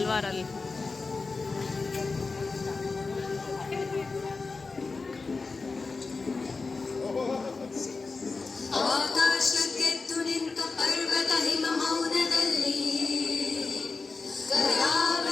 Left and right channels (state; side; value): quieter; right; 4.1 dB